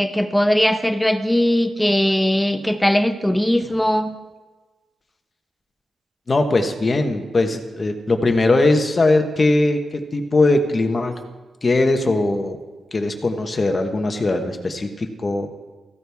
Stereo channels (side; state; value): both; normal; correlation 0.94